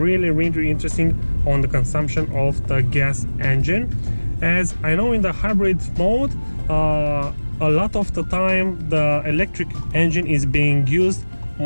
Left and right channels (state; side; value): inverted; both; correlation -1.00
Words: interested on the consumption of the gas engine, as I know in the hybrid mode a lot of the time the electric engine is being used